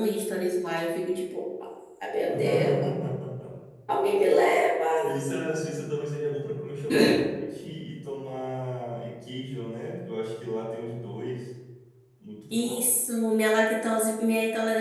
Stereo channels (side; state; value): both; identical; correlation 1.00